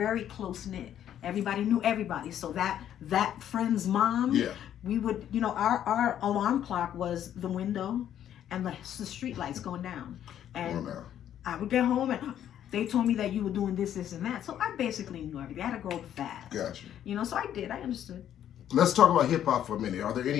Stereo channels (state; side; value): quieter; right; 10.5 dB